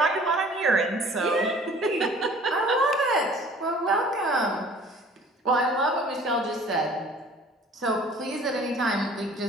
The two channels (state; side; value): normal; both; correlation 0.50